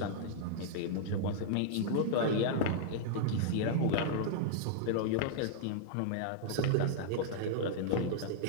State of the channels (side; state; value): both; different; correlation -0.01